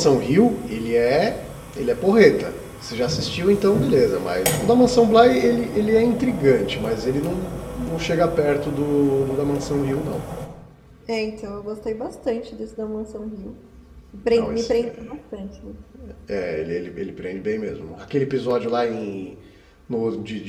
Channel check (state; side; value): identical; both; correlation 1.00